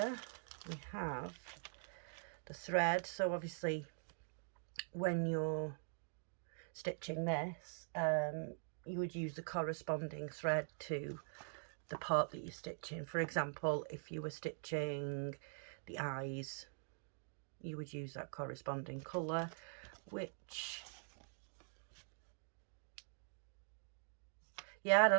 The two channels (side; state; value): left; silent; digital silence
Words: we have the thread. So obviously when you're stitching this, you would use the corresponding thread to the part that you're stitching. For example, if you were stitching the eyes, you would use that corresponding colour, which Yeah, I